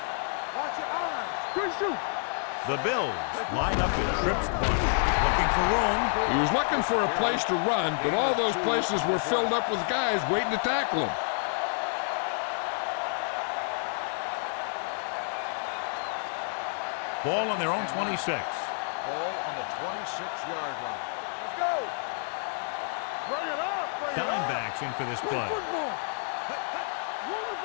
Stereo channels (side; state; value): right; silent; 57 dB below the other